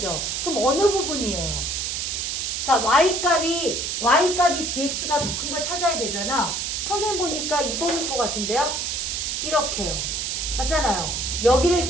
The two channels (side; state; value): right; noise; hiss, 2 dB below the sound